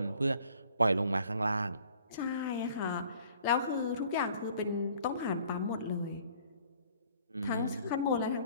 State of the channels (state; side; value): inverted; both; correlation -0.56